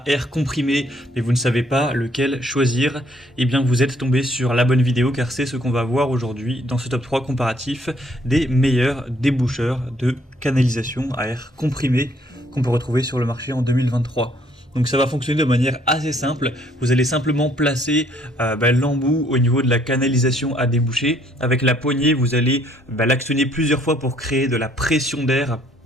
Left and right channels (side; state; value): both; normal; correlation 0.65